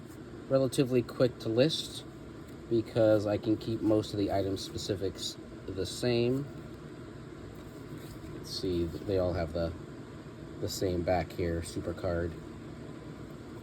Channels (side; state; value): both; identical; correlation 1.00